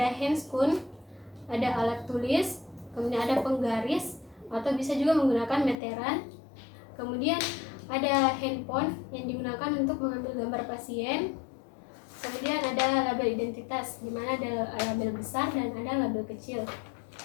handscoon, ada alat tulis, kemudian ada penggaris atau bisa juga menggunakan meteran. Kemudian ada handphone yang digunakan untuk mengambil gambar pasien. Kemudian ada label identitas, di mana ada label besar dan ada label kecil.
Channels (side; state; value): right; drops out; at 5.8 s